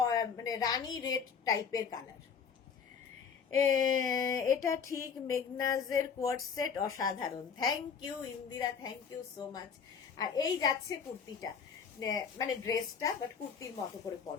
মানে রানী রেড টাইপের কালার। এটা ঠিক, মেগনাজের কোয়ার্ড সেট অসাধারণ। Thank you Indira, thank you so much. আর এই যাচ্ছে কুর্তিটা, মানে ড্রেসটা, বাট কুর্তির মতো করে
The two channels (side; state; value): right; quieter; 6.5 dB